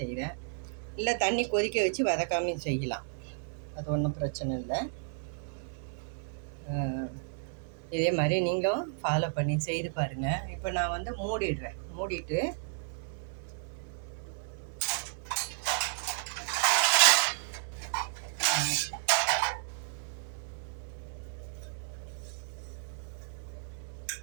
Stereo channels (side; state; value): left; silent; digital silence